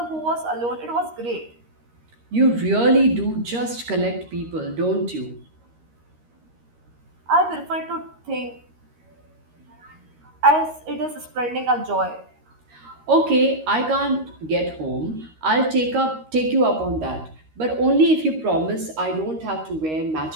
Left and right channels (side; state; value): left; late; 13 ms